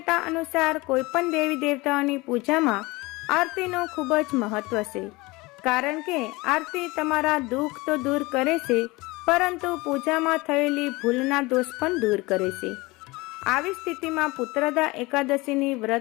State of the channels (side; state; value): right; quieter; 22.8 dB